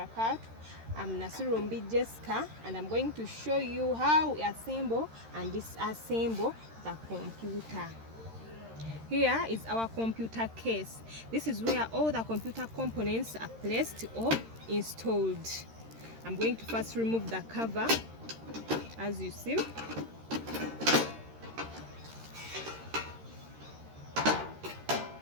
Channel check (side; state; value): left; late; 13 ms